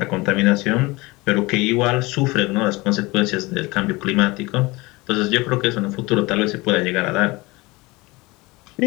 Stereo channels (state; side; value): quieter; right; 23.0 dB